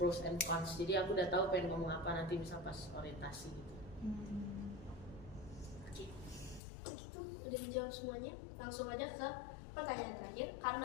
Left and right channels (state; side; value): drops out; right; at 6.6 s